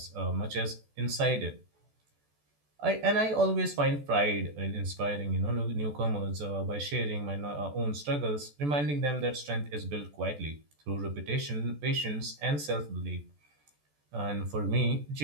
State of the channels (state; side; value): late; left; 14 ms